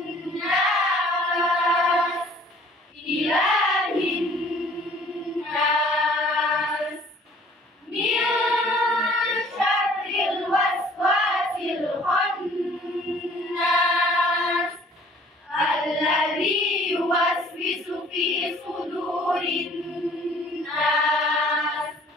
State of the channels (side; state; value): both; normal; correlation 0.54